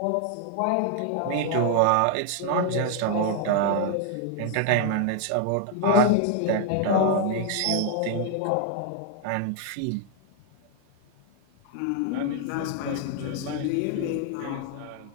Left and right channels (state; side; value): different; both; correlation 0.00